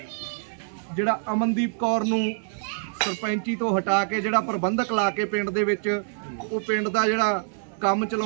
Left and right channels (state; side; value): silent; left; digital silence